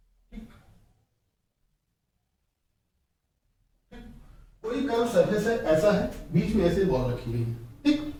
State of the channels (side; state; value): both; identical; correlation 1.00